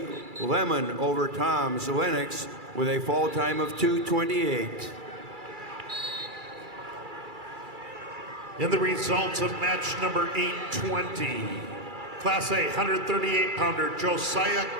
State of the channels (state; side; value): late; left; 2.3 ms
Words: Lemon over Toms Lennox with a fall time of 228. And the results of match number 820. Class A 138-pounder Josiah